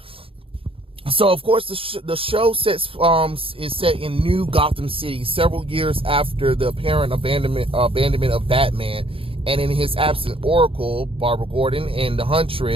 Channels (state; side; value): late; left; 0.27 ms